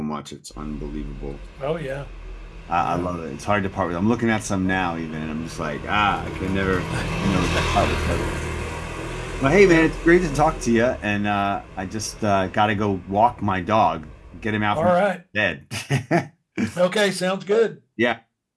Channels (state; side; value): identical; both; correlation 1.00